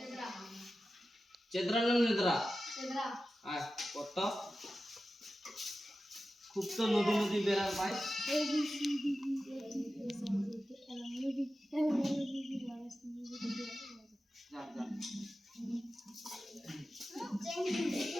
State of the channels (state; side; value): normal; both; correlation 0.93